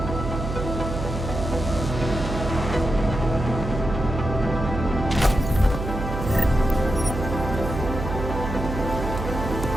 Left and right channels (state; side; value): noise; right; hum, 5 dB below the sound